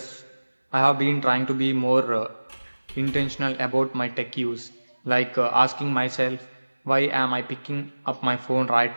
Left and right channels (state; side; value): inverted; both; correlation -1.00